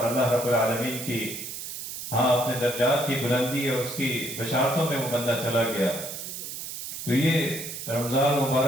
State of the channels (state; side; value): noise; right; hiss, 8 dB below the sound